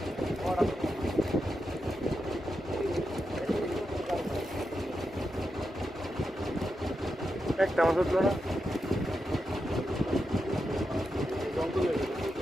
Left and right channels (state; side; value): normal; both; correlation 0.87